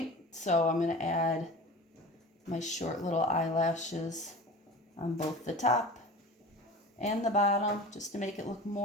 so I'm going to add my short little eyelashes on both the top and the bottom just to make it look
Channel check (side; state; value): both; normal; correlation 0.36